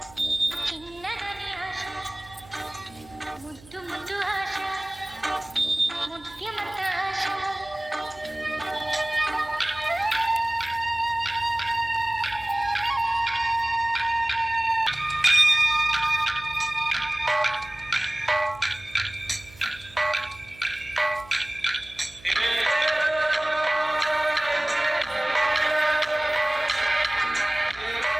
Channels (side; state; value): right; noise; hum, 23 dB below the sound